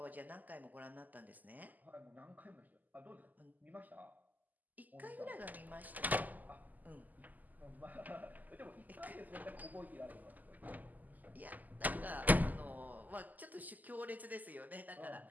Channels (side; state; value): left; late; 0.082 ms